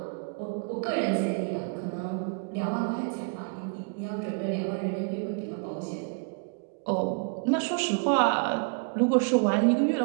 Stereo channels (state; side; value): quieter; left; 39.8 dB